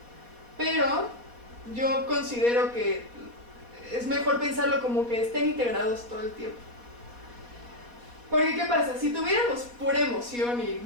pero yo considero que es mejor pensarlo como que estén integrados todo el tiempo. Porque ¿qué pasa? Si tuviéramos pura emoción y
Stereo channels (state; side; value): late; left; 4.2 ms